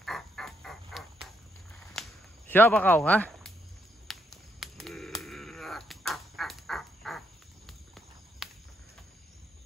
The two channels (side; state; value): both; normal; correlation 0.76